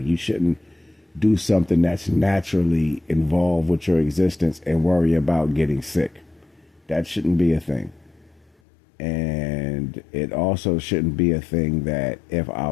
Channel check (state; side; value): drops out; right; at 8.5 s